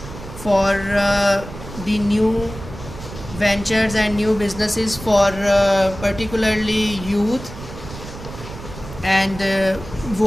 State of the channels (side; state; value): right; noise; rumble, 13 dB below the sound